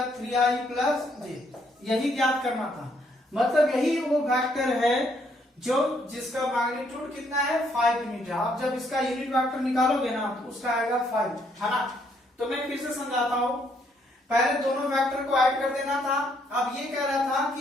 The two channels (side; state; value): both; normal; correlation 0.70